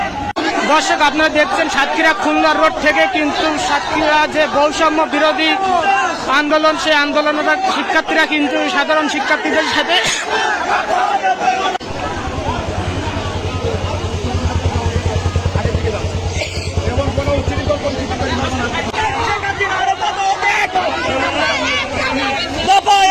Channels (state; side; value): identical; both; correlation 1.00